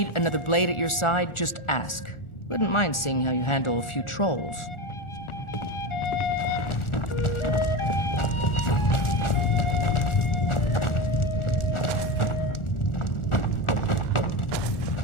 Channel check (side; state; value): right; late; 1.4 ms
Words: another blade at your side, just ask. Wouldn't mind seeing how you handle a few trolls.